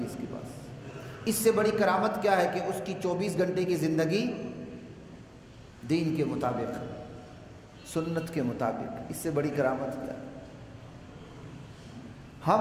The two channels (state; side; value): identical; both; correlation 1.00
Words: اس کے پاس۔ اس سے بڑی کرامت کیا ہے کہ اس کی 24 گھنٹے کی زندگی دین کے مطابق، سنت کے مطابق، اس سے بڑی کرامت کیا ہے؟